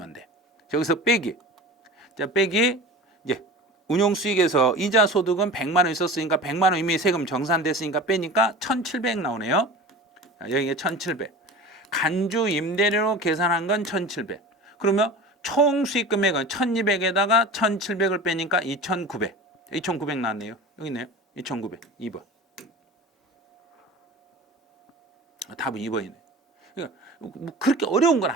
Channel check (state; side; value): normal; both; correlation 0.35